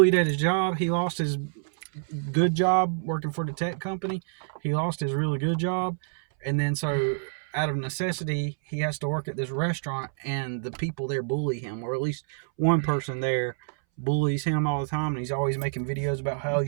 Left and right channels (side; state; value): left; silent; 60 dB below the other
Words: at his job. He lost his good job working for the tech company. He lost his really good job. And then so out of necessity, he has to work at this restaurant, and the people there bully him, or at least one person there bullies him all the time, and he's always making videos about how